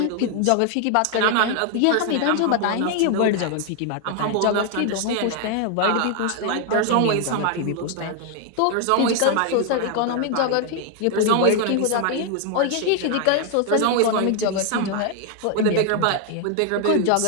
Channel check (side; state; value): both; different; correlation 0.00